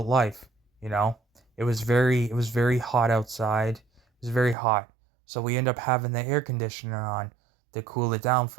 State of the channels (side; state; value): left; drops out; at 4.5 s